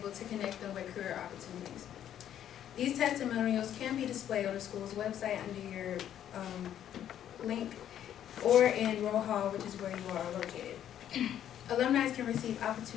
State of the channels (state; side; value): quieter; right; 10.5 dB